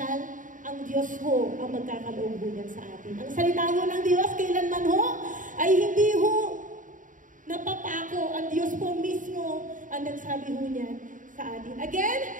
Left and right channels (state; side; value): late; left; 0.38 ms